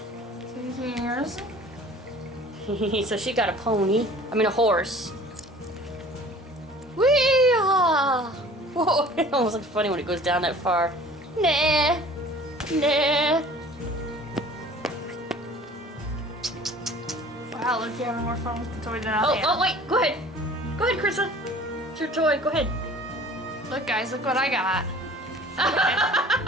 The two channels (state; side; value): normal; both; correlation 0.47